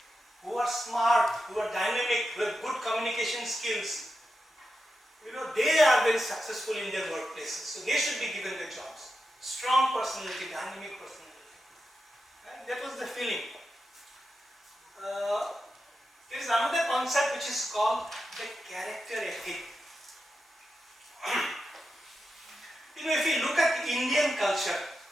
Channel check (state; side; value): normal; both; correlation 0.89